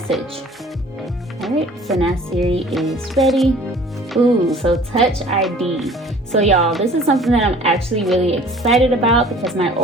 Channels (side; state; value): both; normal; correlation 0.49